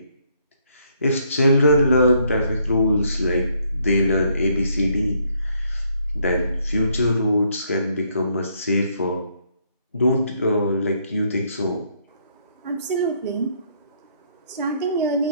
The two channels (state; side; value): inverted; both; correlation -0.70